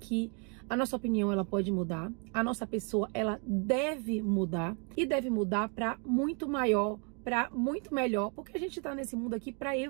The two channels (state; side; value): quieter; left; 37.4 dB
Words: a nossa opinião ela pode mudar, a nossa pessoa ela deve mudar e deve mudar para muito maior, para muito melhor, porque a gente está nesse mundo aqui para